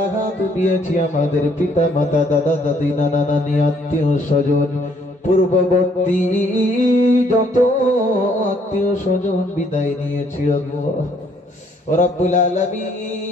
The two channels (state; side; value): normal; both; correlation 0.66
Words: হাত দিয়েছি, আমাদের পিতা মাতা, দাদা দাদি, নানা নানি, আত্মীয় স্বজন, পূর্ববর্তী যত আত্মীয় স্বজন বিদায় নিয়েছি আল্লাহ, রব্বুল